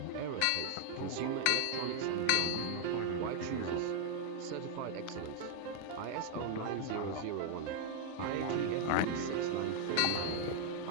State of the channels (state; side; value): different; both; correlation 0.00